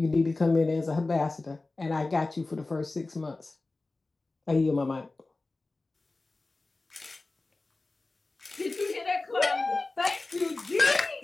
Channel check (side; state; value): right; quieter; 3.3 dB